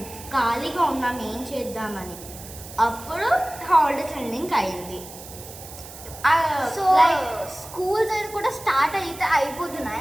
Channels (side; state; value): right; noise; hiss, 15 dB below the sound